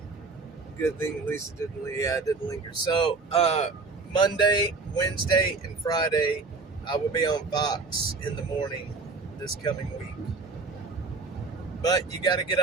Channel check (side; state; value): left; quieter; 4.1 dB